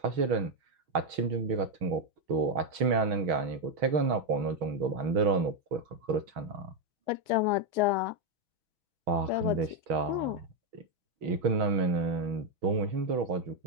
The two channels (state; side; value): late; left; 6.3 ms